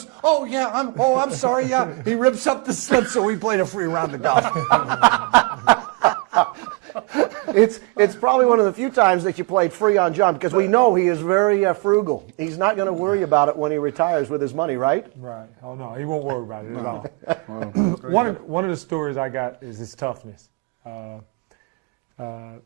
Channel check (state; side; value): quieter; left; 26.4 dB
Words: oh, yeah, I'm sorry, yeah. He rips up the slip so we played a free round of golf. It's probably one of the few times that you played free on John, because we know he is very frugal. He's not going to worry about it when he retires with his money, right? Right. Oh, no, he won't worry about it at all. One of the stories I got is his toughness.